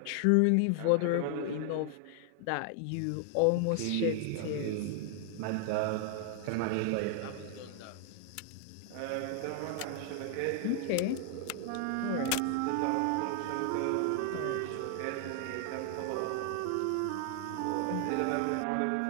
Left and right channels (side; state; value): both; different; correlation 0.00